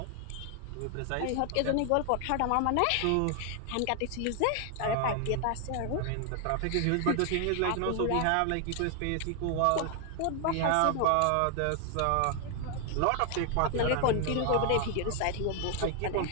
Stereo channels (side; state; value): both; different; correlation 0.00